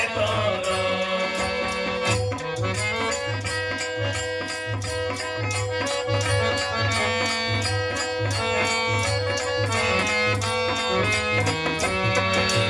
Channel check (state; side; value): identical; both; correlation 1.00